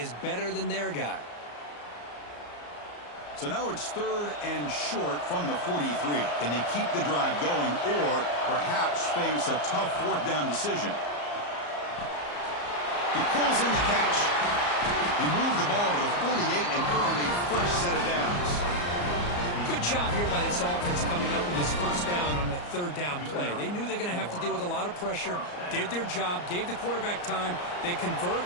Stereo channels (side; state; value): right; late; 34 ms